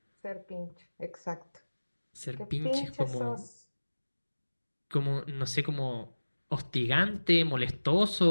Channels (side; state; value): both; inverted; correlation -1.00